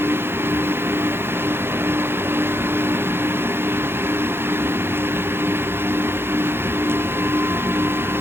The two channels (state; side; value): late; left; 0.11 ms